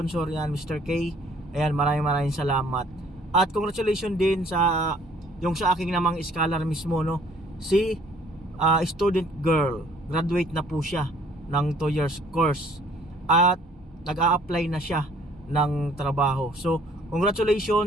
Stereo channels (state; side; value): normal; both; correlation 0.59